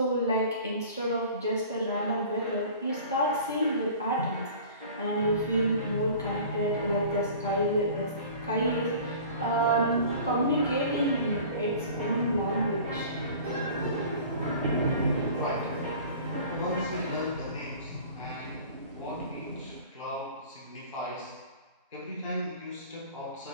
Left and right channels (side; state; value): both; inverted; correlation -0.44